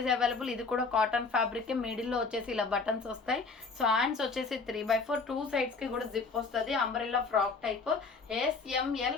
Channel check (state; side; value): quieter; right; 4.4 dB